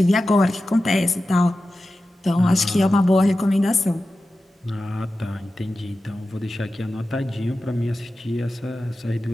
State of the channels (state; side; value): normal; both; correlation 0.93